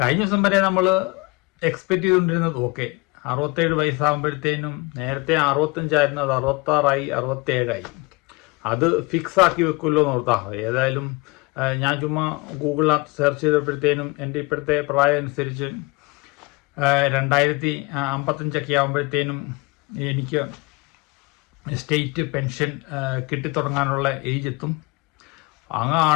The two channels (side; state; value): right; quieter; 25.7 dB